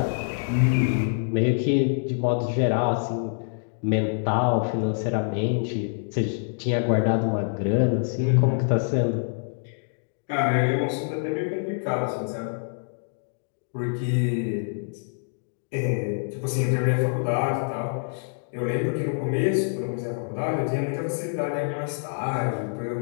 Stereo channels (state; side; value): silent; right; digital silence